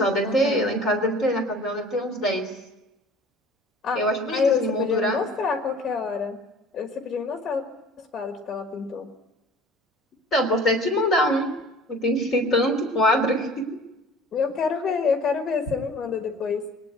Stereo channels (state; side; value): normal; both; correlation 0.45